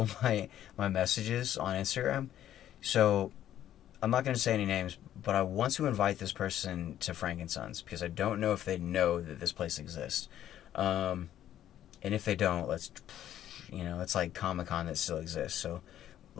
of my messages on Instagram. So, I'm not going to say any names, but I want to invite this person to Frank and Sons, because I don't know if they know that this place exists. And if they don't, let's, you know, it's like Comic-Con that still exists, so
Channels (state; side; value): quieter; right; 11.6 dB